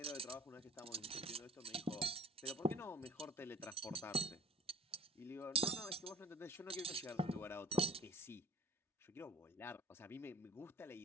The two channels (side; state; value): both; normal; correlation 0.48